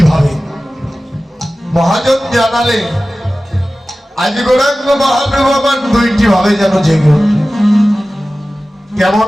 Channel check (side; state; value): both; normal; correlation 0.96